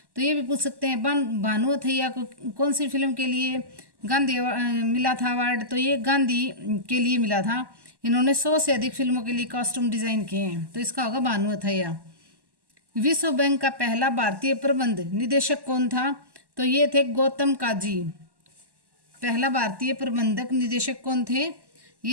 तो ये भी पूछ सकते हैं भानु अथैया को कौन सी फिल्म के लिए गांधी मिला था अवार्ड? तो ये गांधी के लिए मिला था। इन्होंने 100 से अधिक फिल्मों के लिए कॉस्ट्यूम डिजाइन किए हैं। तो इसका होगा भानु अथैया। विश्व बैंक का पहला भारतीय प्रबंध निदेशक कौन था? तो ये थे गौतम काजी। पहला भारतीय प्रबंधक निदेशक कौन थे?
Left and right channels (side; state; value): left; late; 1.1 ms